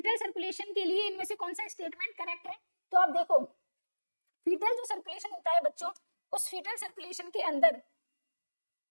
circulation के लिए इनमें से कौन सा स्टेटमेंट करेक्ट है, तो आप देखो, फीटल जो सर्कुलेशन होता है बच्चों, उस फीटल सर्कुलेशन के अंदर,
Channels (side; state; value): both; inverted; correlation -1.00